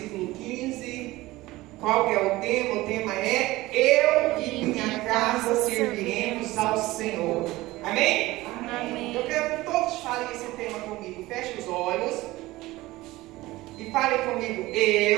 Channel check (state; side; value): quieter; left; 18.7 dB